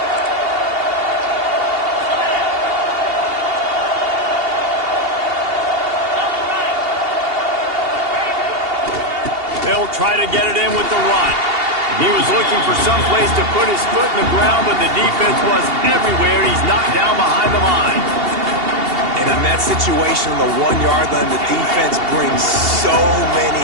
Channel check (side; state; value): left; late; 2.8 ms